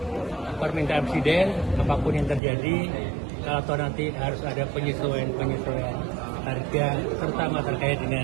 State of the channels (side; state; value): left; drops out; at 2.4 s